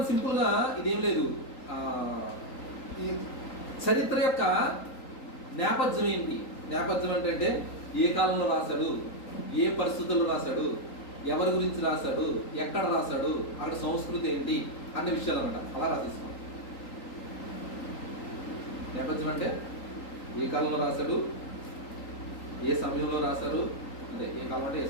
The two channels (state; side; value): late; right; 3.8 ms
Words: సింపుల్గా ఇదేం లేదు, ఈ చరిత్ర యొక్క నేపథ్యం ఏంటి? నేపథ్యం ఏంటంటే ఏ కాలంలో రాశాడు, ఏ పరిస్థితుల్లో రాశాడు, ఎవరి గురించి రాశాడు, ఎక్కడ రాశాడు, అక్కడ సంస్కృతి ఏంటి అనే విషయాలు అన్నమాట. అలా రాసేసుకోండి. నేపథ్యం అంటే ఏ కాలంలో రాశాడు, ఏ సమయంలో రాశారు, అంటే ఏ కాలం అంటే ఏ